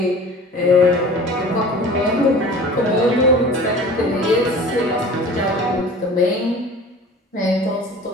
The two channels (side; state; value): both; normal; correlation 0.42